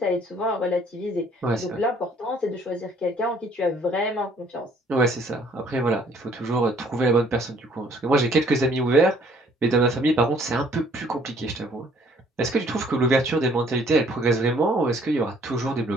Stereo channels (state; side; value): normal; both; correlation 0.60